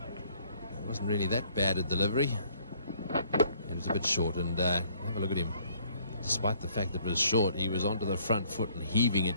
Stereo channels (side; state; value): both; inverted; correlation -0.62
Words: wasn't really that bad a delivery. It was a bit short, and have a look at him. Despite the fact that it was short, he was onto the front foot and heaving